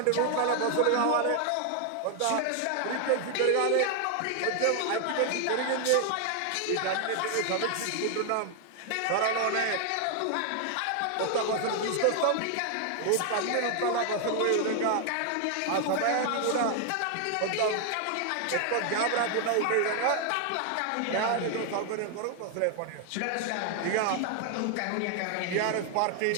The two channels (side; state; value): both; different; correlation 0.00